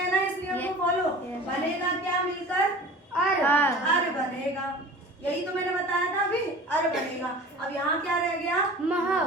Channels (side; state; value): both; normal; correlation 0.40